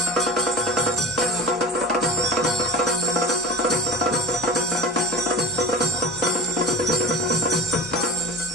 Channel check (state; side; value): normal; both; correlation 0.31